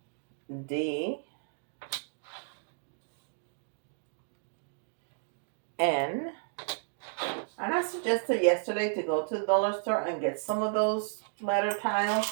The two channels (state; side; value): silent; left; digital silence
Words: D. N. And I suggested yesterday to go to the dollar store and get some of those letter